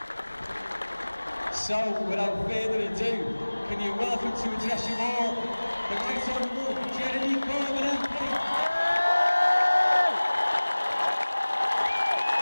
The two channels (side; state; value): both; inverted; correlation -1.00